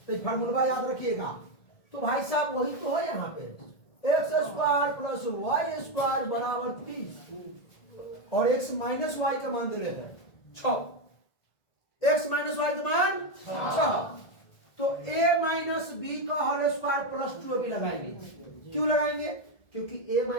तो ये फार्मूला याद रखिएगा। तो भाई साहब वही तो है यहाँ पे, X square plus Y square बराबर 30, और एक्स माइनस वाई का मान दे रहे हैं 6। एक्स माइनस वाई का मान 6, तो a माइनस बी का होल स्क्वायर प्लस 2ab लगाएंगे। क्यों लगाएंगे? क्योंकि a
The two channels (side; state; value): right; late; 1.7 ms